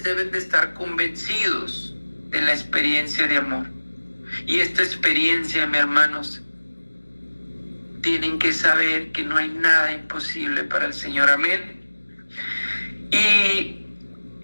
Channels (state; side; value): inverted; both; correlation -1.00